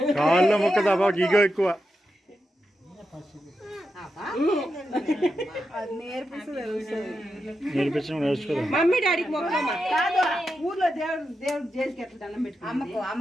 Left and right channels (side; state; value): both; normal; correlation 0.88